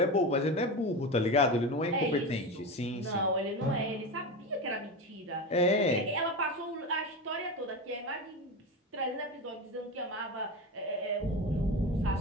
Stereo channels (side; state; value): both; normal; correlation 0.23